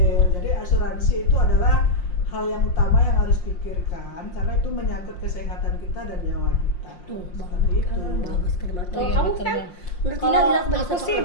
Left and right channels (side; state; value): right; late; 5.6 ms